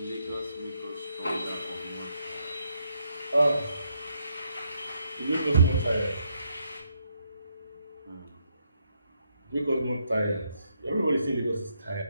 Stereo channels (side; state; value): both; inverted; correlation -0.76